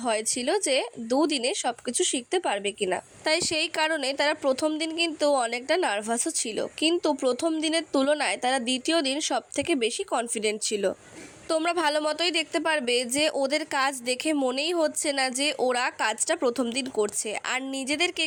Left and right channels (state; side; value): identical; both; correlation 1.00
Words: ভয় ছিল যে দুদিনে সব কিছু শিখতে পারবে কিনা। তাই সেই কারণে তারা প্রথম দিন কিন্তু অনেকটা নার্ভাসও ছিল, কিন্তু প্রথম দিনের তুলনায় তারা দ্বিতীয় দিন সব থেকে বেশি কনফিডেন্ট ছিল। তোমরা ভালো মতোই দেখতে পারবে যে ওদের কাজ দেখে মনেই হচ্ছে না যে ওরা কাজটা প্রথম দিন করছে, আর নিজেদের